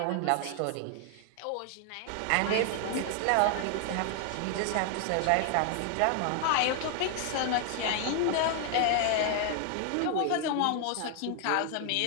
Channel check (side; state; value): both; different; correlation 0.00